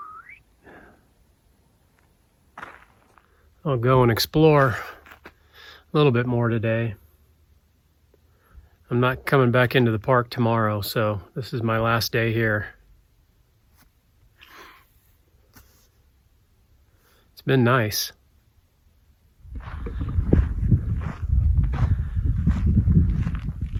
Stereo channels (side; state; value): both; identical; correlation 1.00